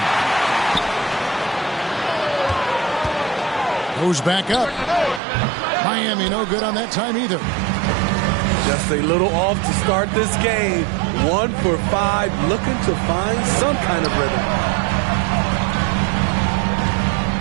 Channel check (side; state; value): left; drops out; at 5.2 s